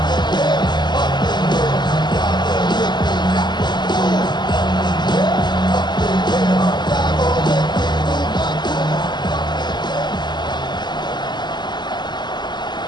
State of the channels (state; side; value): late; right; 0.21 ms